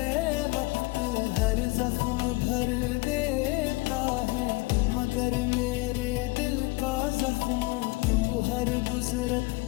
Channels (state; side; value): quieter; right; 23.5 dB